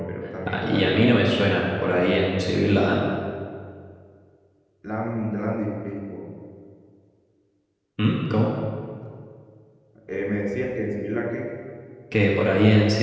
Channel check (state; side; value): identical; both; correlation 1.00